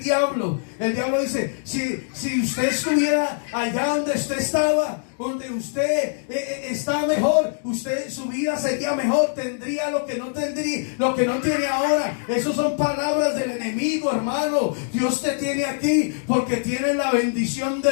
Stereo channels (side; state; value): right; silent; digital silence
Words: diablo. El diablo dice, si usted estuviera allá donde usted estaba, donde usted está mejor, su vida sería mejor, tendría lo que no tiene ahora. Esas son palabras del enemigo, hermano. Dios te tiene aquí porque tienes la bendición